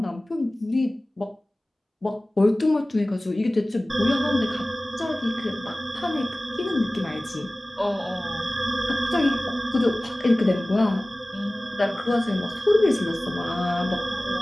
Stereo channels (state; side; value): normal; both; correlation 0.98